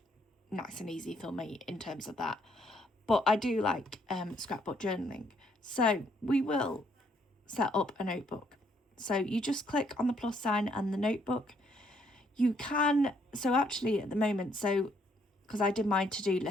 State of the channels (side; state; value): both; normal; correlation 0.69